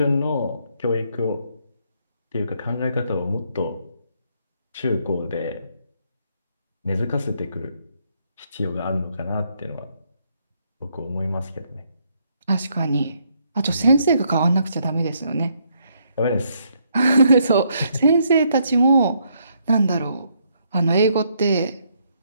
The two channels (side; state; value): both; inverted; correlation -0.73